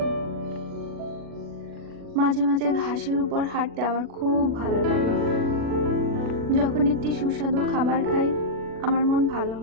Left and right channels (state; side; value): late; left; 40 ms